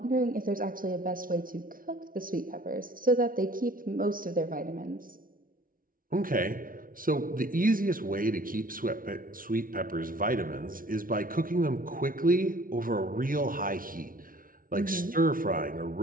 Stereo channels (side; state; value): left; late; 0.41 ms